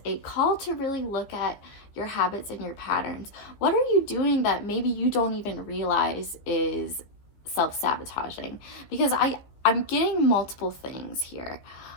a call to really look at your habits and your patterns. What are you doing that maybe you don't even realize is self-sabotaging? Because I'm getting multiple things here,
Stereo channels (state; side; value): late; right; 15 ms